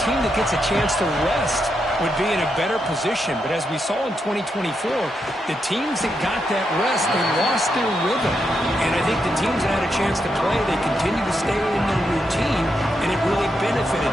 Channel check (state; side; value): normal; both; correlation 0.83